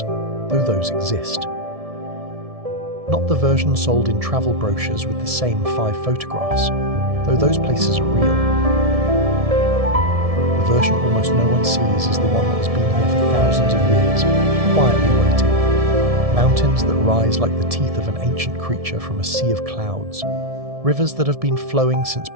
though those exist. Not the version sold in travel brochures with the same 5 photographs, though those places are real. The version almost no one sees is the one that has been here for thousands of years, quietly waiting. Mountains that rise like the teeth of an ancient creature from a sea of clouds. Rivers that have been flowing since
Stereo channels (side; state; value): left; late; 1.7 ms